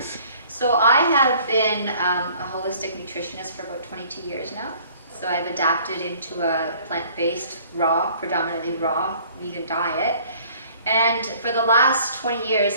So I have been a holistic nutritionist for about 22 years now. So I've adapted into a plant-based, predominantly raw, vegan diet. And for the last 20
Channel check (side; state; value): both; inverted; correlation -0.54